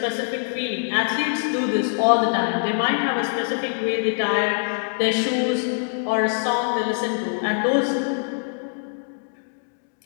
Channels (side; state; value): right; silent; 63 dB below the other